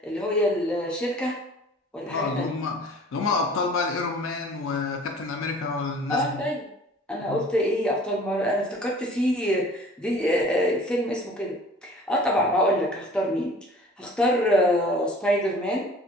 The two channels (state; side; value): normal; both; correlation 0.48